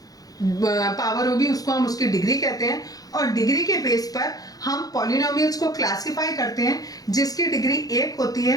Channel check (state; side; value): late; right; 0.18 ms